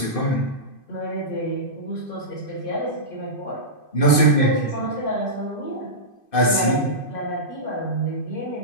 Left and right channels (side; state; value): right; late; 2.5 ms